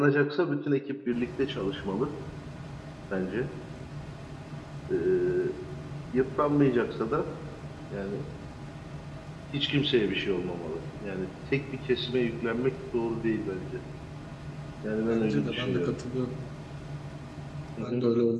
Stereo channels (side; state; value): both; identical; correlation 1.00